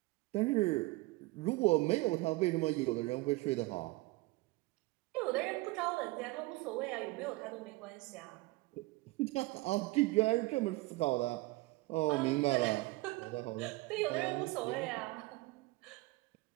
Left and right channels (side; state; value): left; quieter; 21.7 dB